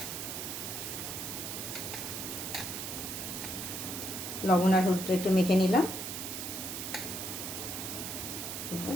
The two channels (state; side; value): noise; right; hiss, 5 dB below the sound